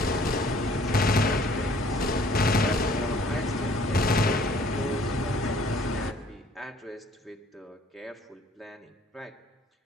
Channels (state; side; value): normal; both; correlation 0.57